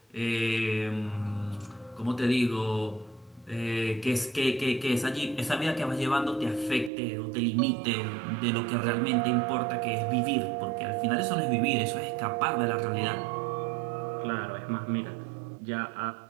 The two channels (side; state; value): left; drops out; at 6.9 s